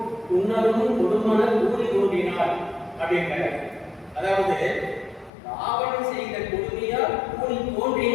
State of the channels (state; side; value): drops out; right; at 5.3 s